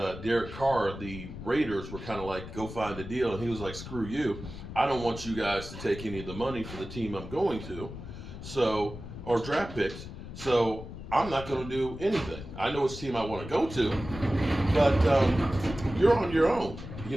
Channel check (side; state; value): left; noise; rumble, 11 dB below the sound